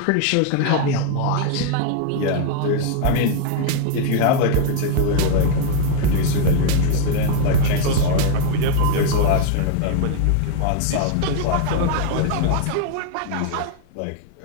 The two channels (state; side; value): different; both; correlation 0.00